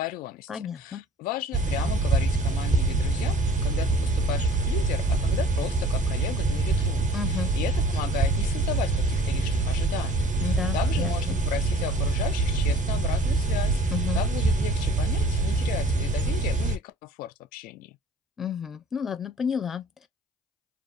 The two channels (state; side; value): normal; both; correlation 0.49